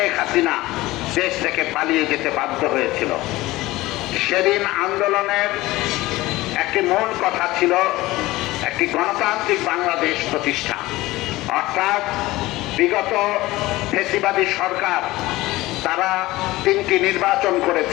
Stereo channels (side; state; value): right; quieter; 18.6 dB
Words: হাসিনা দেশ থেকে পালিয়ে যেতে বাধ্য হয়েছিল। সেদিন আন্দোলনের একটি মূল কথা ছিল একটি গণতান্ত্রিক বাংলাদেশ প্রতিষ্ঠা। অর্থাৎ বিগত ফ্যাসিবাদী সরকার তারা 3টি নির্বাচন